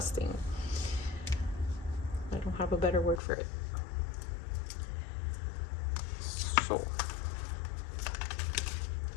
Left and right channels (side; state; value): right; drops out; at 3.2 s